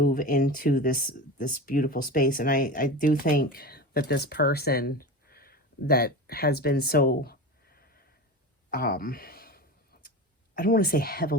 into this beautiful space. And I do think that this person that has been so, I I don't want to say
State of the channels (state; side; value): normal; both; correlation 0.28